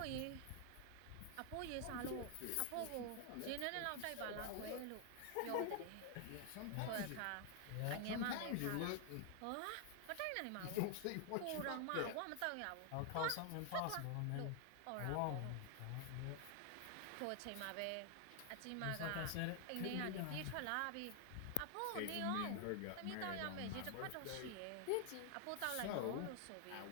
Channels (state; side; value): different; both; correlation 0.00